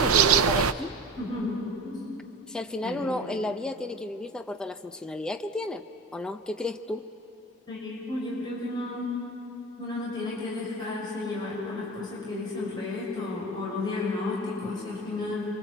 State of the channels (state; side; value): normal; both; correlation 0.32